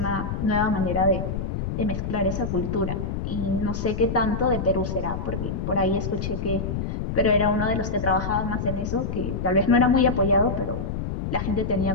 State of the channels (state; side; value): noise; left; rumble, 3 dB below the sound